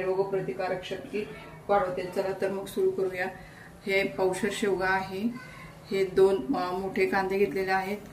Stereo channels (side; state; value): both; identical; correlation 1.00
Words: रोगप्रतिकारक शक्ती वाढवते. चला तर मग सुरू करूया. हे पावशेर शेवगा आहे. हे 2 मोठे कांदे घेतलेले आहेत,